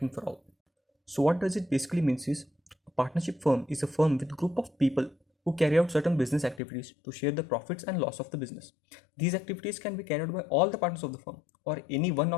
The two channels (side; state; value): right; drops out; at 6.6 s